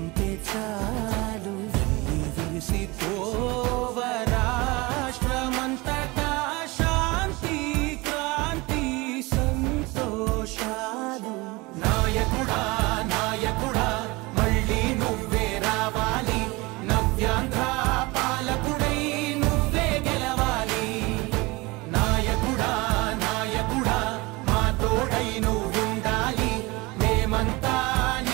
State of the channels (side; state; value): left; quieter; 23.8 dB